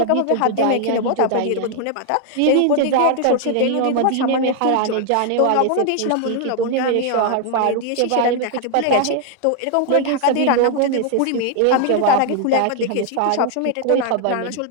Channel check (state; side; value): different; both; correlation 0.00